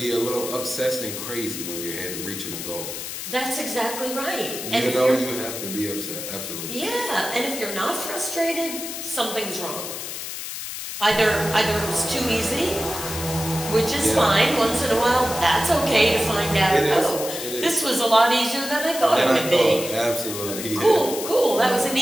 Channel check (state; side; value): noise; left; hiss, 7 dB below the sound